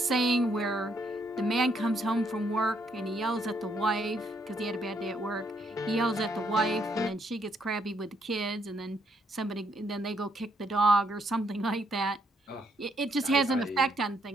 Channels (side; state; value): both; normal; correlation 0.73